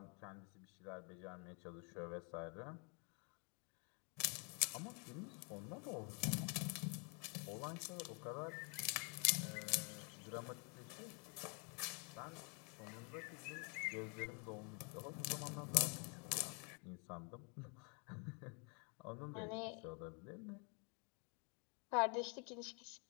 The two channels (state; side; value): quieter; right; 35.9 dB